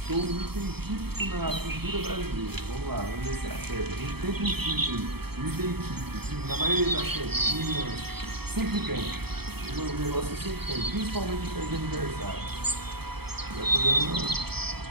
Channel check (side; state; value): left; late; 0.97 ms